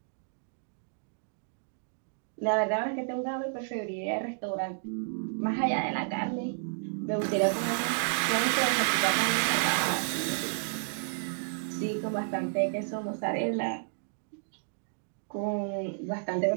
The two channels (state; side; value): silent; left; digital silence